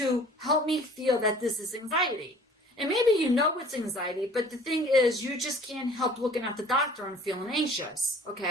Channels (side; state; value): both; normal; correlation 0.49